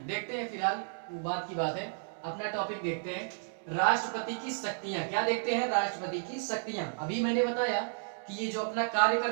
देखते हैं, फिलहाल वो बात की बात है, अपना टॉपिक देखते हैं, राष्ट्रपति की शक्तियां। क्या देखते हैं? राष्ट्रपति की शक्तियां। अभी मैंने बताया कि ये जो अपना कार्य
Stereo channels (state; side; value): silent; left; digital silence